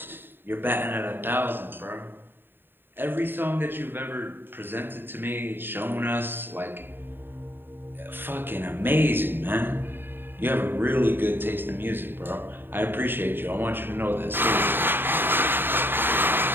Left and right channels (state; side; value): late; left; 0.098 ms